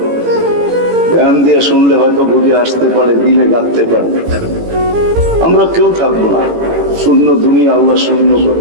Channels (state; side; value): late; left; 18 ms